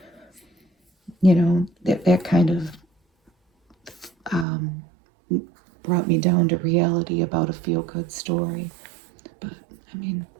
you know, that kind of brought me down to reality about a feel-good story. But I mean,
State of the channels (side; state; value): left; drops out; at 4.5 s